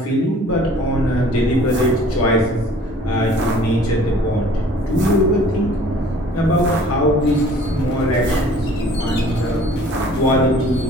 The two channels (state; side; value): normal; both; correlation 0.52